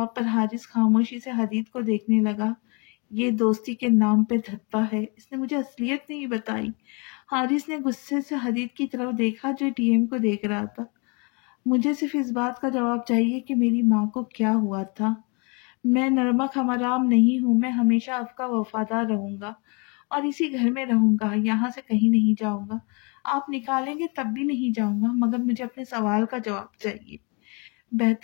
پر حارث خاموشی سے حدید کو دیکھنے لگا۔ یہ دوستی کے نام پہ دھپا ہے، اس نے مجھے اصلیت نہیں بتائی۔ حارث نے غصے سے حدید کی طرف دیکھا جو ڈی ایم کو دیکھ رہا تھا۔ مجھے صرف اس بات کا جواب چاہیے کہ میری ماں کو کیا ہوا تھا۔ میں نرمک حرام نہیں ہوں، میں ہمیشہ آپ کا وفادار رہوں گا اور اسی گھر میں رہوں گا، یہاں سے کہیں نہیں جاؤں گا۔ آپ نکالیں گے تب بھی نہیں جاؤں گا، مگر مجھے اپنے سوال کا جواب چاہیے۔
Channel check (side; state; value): right; quieter; 32.3 dB